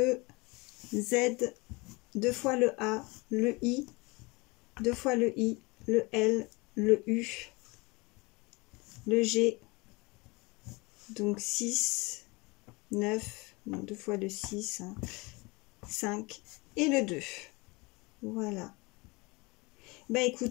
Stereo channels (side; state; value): right; quieter; 25.6 dB